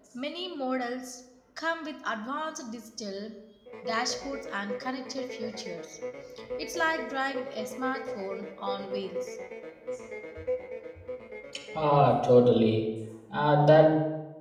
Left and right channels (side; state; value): both; identical; correlation 1.00